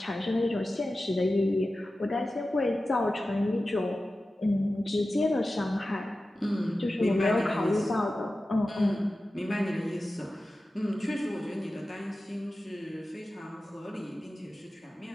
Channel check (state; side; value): normal; both; correlation 0.94